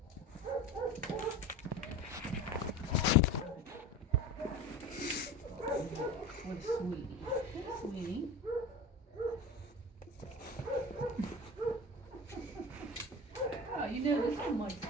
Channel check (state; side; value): normal; both; correlation 0.31